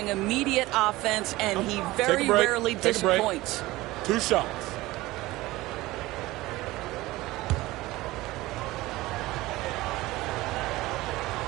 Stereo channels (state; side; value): quieter; left; 18.8 dB